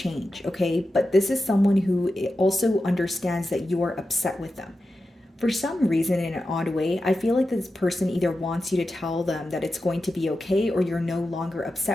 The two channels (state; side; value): normal; both; correlation 0.91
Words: okay? But this is someone who also understands that you're upset with them. For some reason, in an odd way, I feel like this person either wants you to tell them that it's going to be okay, or you're no longer